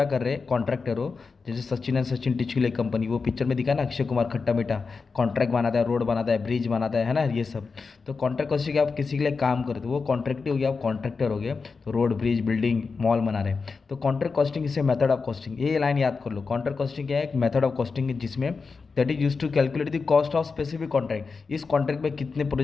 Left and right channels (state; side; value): quieter; right; 4.7 dB